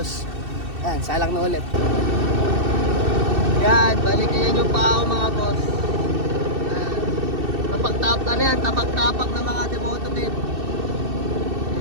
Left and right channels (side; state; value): left; late; 2.7 ms